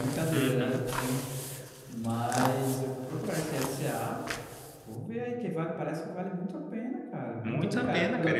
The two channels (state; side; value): identical; both; correlation 1.00